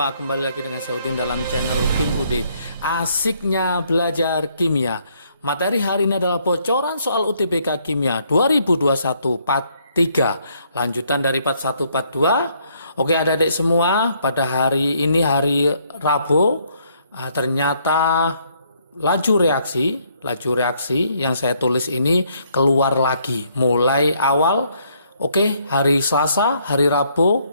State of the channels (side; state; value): both; inverted; correlation -0.69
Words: kembali lagi dengan saya Udin dalam channel Kim UD. Asiknya belajar kimia. Materi hari ini adalah bocoran soal UTBK Kimia 2021 Part 3. Lanjutan dari Part 1 Part 2. Oke adik-adik semua, pada hari ini hari Rabu, ternyata laju reaksi yang saya tulis ini keluar lagi mulai awal. Oke, hari Selasa, hari